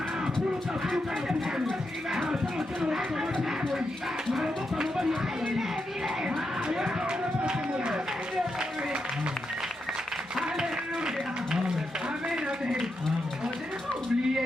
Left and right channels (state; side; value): normal; both; correlation 0.85